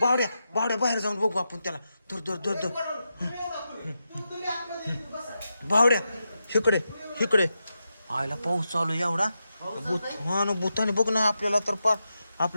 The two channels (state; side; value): inverted; both; correlation -0.88